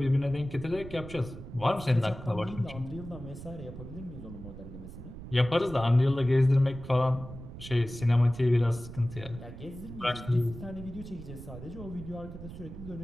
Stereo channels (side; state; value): right; noise; rumble, 12 dB below the sound